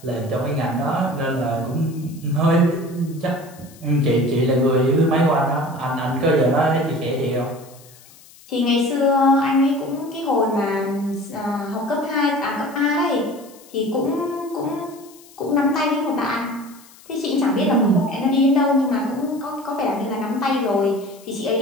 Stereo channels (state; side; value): noise; left; hiss, 24 dB below the sound